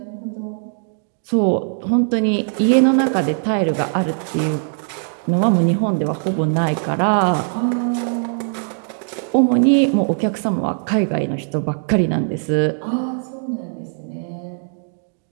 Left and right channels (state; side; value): silent; left; digital silence